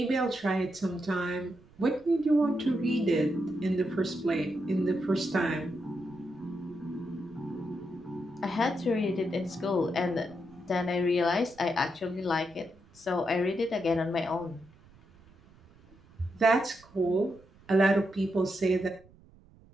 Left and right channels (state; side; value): noise; right; rumble, 26 dB below the sound